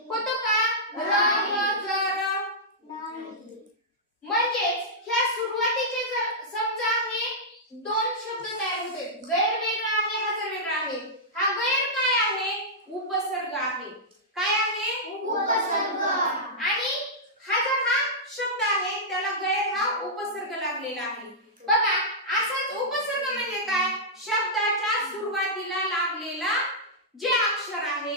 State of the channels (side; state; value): both; normal; correlation -0.11